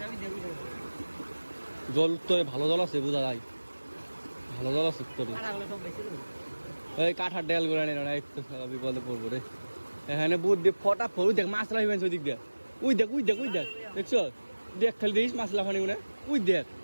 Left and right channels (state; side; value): inverted; both; correlation -1.00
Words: জল উত্তরে ভালো জল আছে বোঝা যায় ভালো জল আছে উত্তরে এই কাঠার ডেল করে নেই না একটু বিপদে পড়বো রে এখানে বুধ দিয়ে ফটা ফট দেখ মাছ লাফিবেন ওই দিক দিয়ে উই দেখ দেখছো দেখ খালি দেখিস মাছ লাফানি মনে উই